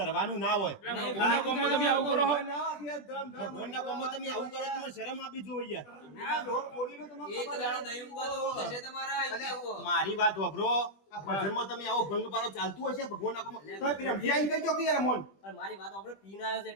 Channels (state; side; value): late; right; 20 ms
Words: ના હોય. ભગવાનના કોમમાં તમે આવું કરો છો? ભગવાનના કોમમાં તમે આવું કરો તો મને શરમ આપી જોઈએ યાર. મારી વાત વાપરો. આ ભજનમાં તમે આવો ભંગ પાડો ચાલતું હશે ભગવાનના કોમમાં. તો પેલા ભૈયા ઈ કહેજો કે યાર મોન. પણ મારી વાત આપણે પીન આવ્યો છે